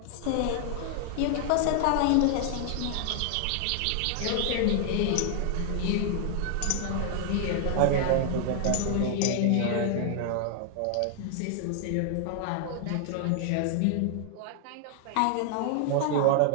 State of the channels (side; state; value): both; different; correlation 0.00